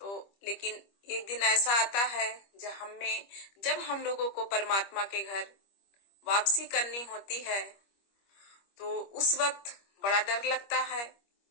लेकिन एक दिन ऐसा आता है जब हम लोगों को परमात्मा के घर वापसी करनी होती है, तो उस वक्त बड़ा डर लगता है।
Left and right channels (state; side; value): late; right; 25 ms